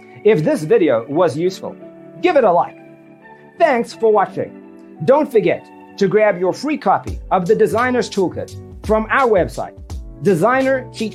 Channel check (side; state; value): both; identical; correlation 1.00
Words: If this video was useful, give it a like. Thanks for watching. Don't forget to grab your free copy of the Designer's Toolkit from our website,